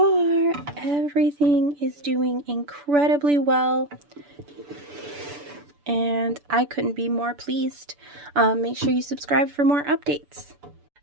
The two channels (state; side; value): late; left; 6.9 ms